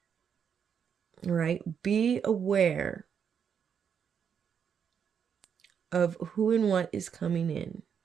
right, be aware of who and what is coming in.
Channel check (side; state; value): left; quieter; 7.5 dB